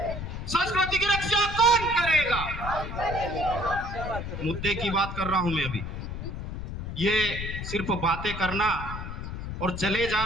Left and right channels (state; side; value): noise; left; rumble, 6 dB below the sound